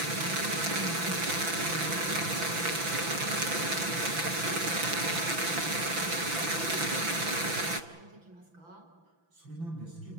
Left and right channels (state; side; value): late; left; 6.0 ms